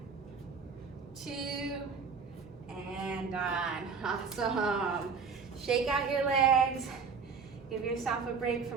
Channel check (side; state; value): left; quieter; 5.4 dB